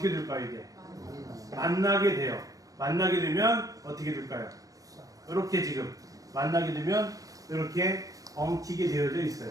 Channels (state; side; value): late; left; 0.17 ms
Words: 될까요? 이게 만나게 돼요. 만나게 되면 어떻게 될까요? 이렇게 지금 만나게 되면 이렇게 엉키게 되어져